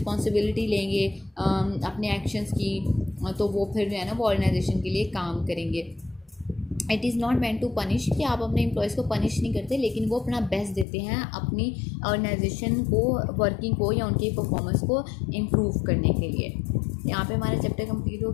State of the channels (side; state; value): right; drops out; at 10.9 s